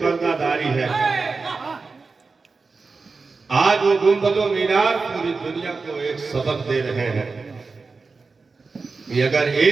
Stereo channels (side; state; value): left; quieter; 4.3 dB